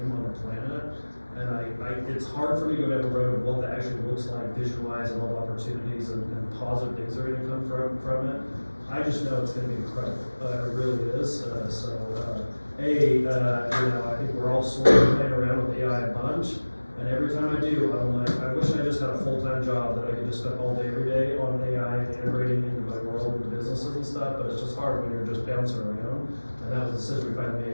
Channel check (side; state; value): both; inverted; correlation -1.00